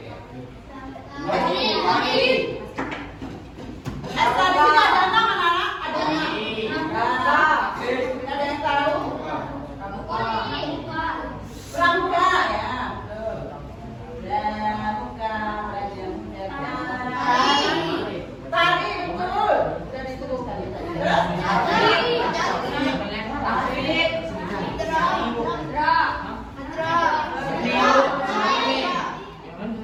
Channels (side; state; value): both; identical; correlation 1.00